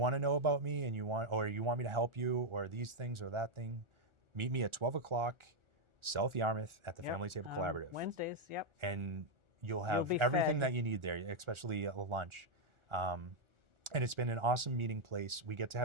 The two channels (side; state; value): left; late; 1.4 ms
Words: to know about me and you want me to help you or these things or that thing, meet me at 12 o'clock, South Yarmouth at the Family Table Collaborative. Wednesdays, yep. And you'll have be everything fed. that you need there, especially at lunch. And it's been an awesome meeting place. We get to